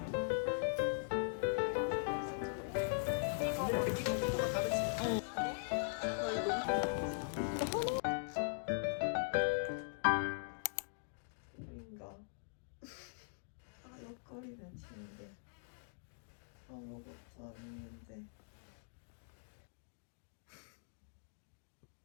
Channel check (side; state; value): right; silent; digital silence